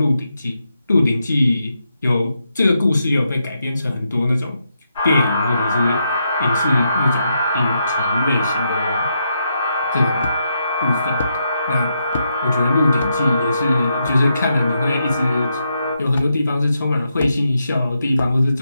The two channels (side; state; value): both; inverted; correlation -0.81